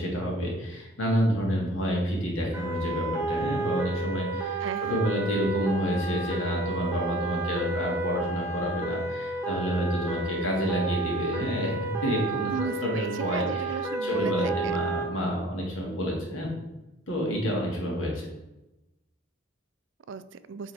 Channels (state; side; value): normal; both; correlation 0.48